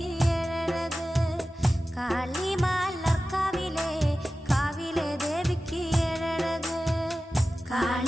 ഏഴഴക്. കാളിമാലർക്കാവിലെ കാവിലെ ദേവിക്ക് ഏഴഴക്.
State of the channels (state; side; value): normal; both; correlation 0.95